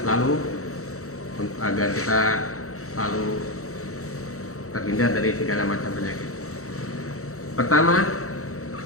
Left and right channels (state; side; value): late; right; 0.64 ms